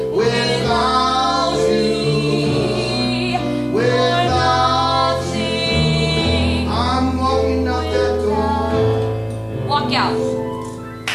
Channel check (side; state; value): both; identical; correlation 1.00